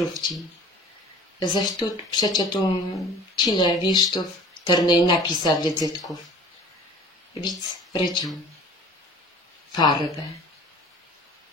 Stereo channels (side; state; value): both; normal; correlation 0.44